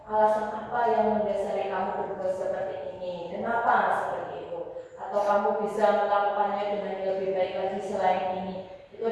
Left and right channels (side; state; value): both; identical; correlation 1.00